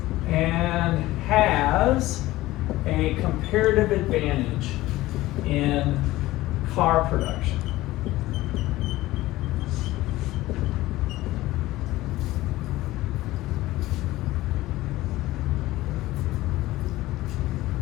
and has a comparative advantage in car production.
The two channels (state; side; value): quieter; right; 17.3 dB